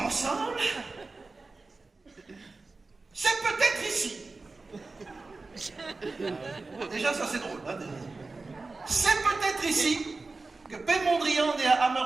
C'est peut-être ici. Déjà, ça c'est drôle. Hein, c'est peut-être ici que P. Mondrian, né à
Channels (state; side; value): quieter; left; 3.7 dB